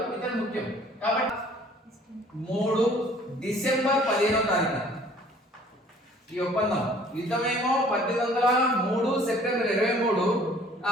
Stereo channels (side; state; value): both; normal; correlation 0.54